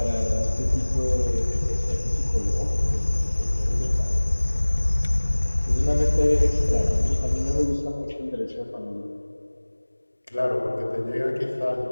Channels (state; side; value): inverted; both; correlation -1.00